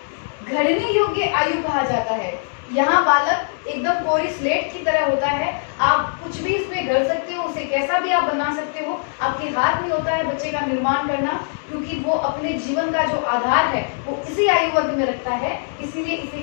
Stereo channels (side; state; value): right; silent; digital silence